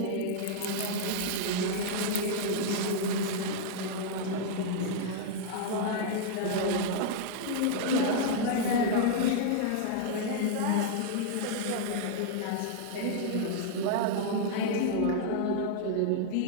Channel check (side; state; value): both; different; correlation -0.01